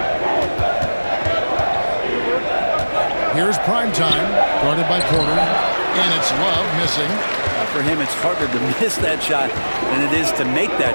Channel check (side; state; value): both; inverted; correlation -1.00